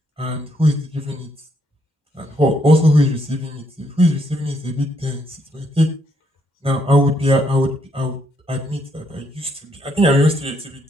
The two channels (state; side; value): normal; both; correlation 0.74